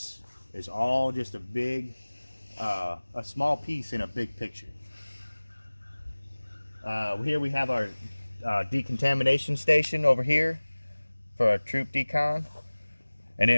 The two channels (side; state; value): both; inverted; correlation -1.00